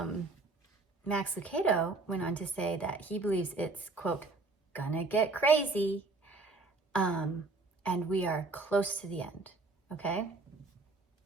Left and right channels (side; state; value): left; quieter; 3.5 dB